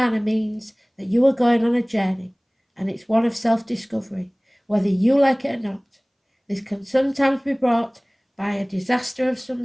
means that you are going on a journey, and it's one of self-discovery, whether you like it or not. This can sometimes be brought by a disaster of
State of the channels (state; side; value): identical; both; correlation 1.00